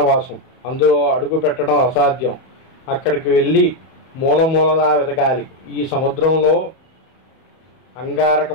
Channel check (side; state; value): right; late; 31 ms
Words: అందులో అడుగు పెట్టడం అసాధ్యం. అక్కడికి వెళ్ళి మూలమూలలా వెతకాలి. ఈ సముద్రంలో